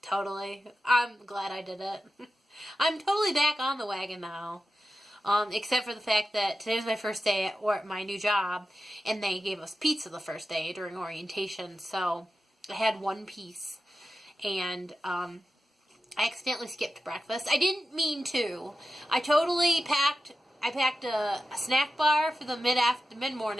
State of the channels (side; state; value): both; normal; correlation 0.91